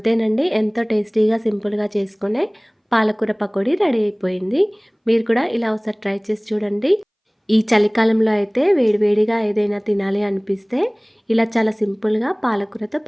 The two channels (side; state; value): both; identical; correlation 1.00